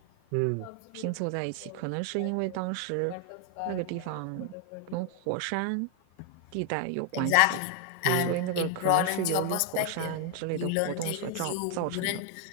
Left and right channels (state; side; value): different; both; correlation 0.00